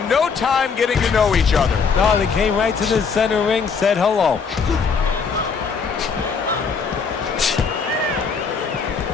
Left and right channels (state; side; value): quieter; right; 5.6 dB